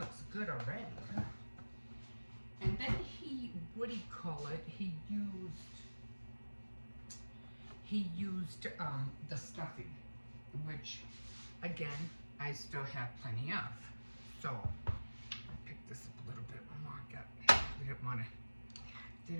good already, huh? And then what do you call it? He used the stuffing, which, again, I still have plenty of. So, I picked this up a little bit more.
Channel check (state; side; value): inverted; both; correlation -1.00